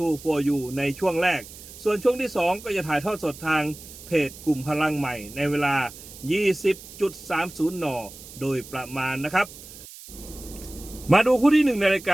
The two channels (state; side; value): noise; right; hiss, 16 dB below the sound